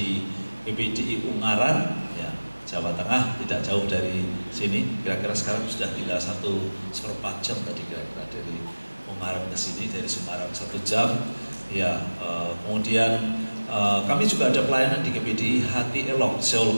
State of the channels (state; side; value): inverted; both; correlation -1.00